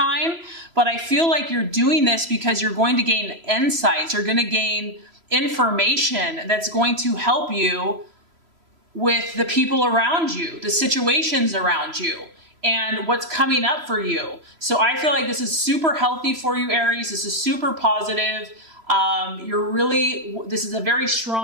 but I feel like you're doing this because you're going to gain insights. You're going to gain information that's going to help you with the people around you, the situations around you, and what's coming up for you. So I feel like this is super healthy for you, Aries. This is super positive. This is a very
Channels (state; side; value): late; left; 3.0 ms